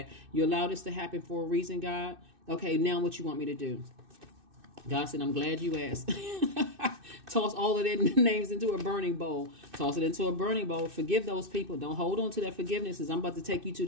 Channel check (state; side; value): late; left; 2.6 ms